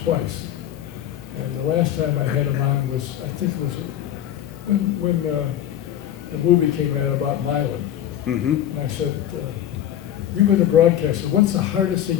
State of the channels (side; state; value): right; quieter; 11.3 dB